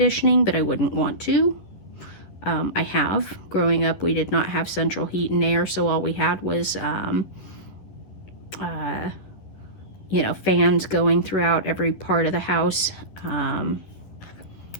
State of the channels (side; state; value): right; late; 11 ms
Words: but I wouldn't want to. I have. Growing up, we did not have central heat and air, so all we had was, fans going throughout every part of the house.